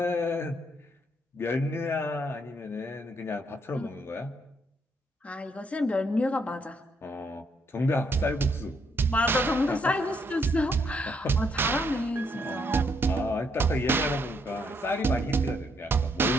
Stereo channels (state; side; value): normal; both; correlation 0.74